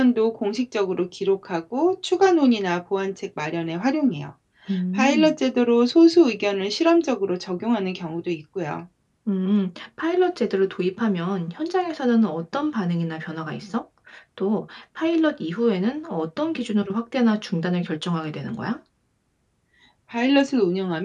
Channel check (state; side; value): identical; both; correlation 1.00